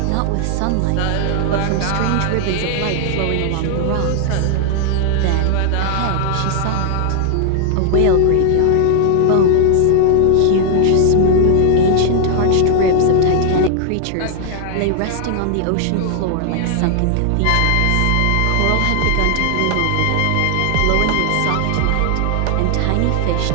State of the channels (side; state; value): both; different; correlation 0.00